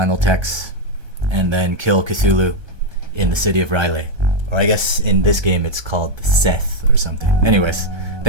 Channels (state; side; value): late; left; 1.3 ms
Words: text and then kill Cthulhu in the city of Riley. Or I guess in this game it's called Seth or something. Anyways,